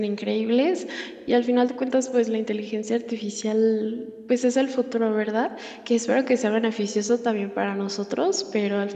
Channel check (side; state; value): both; identical; correlation 1.00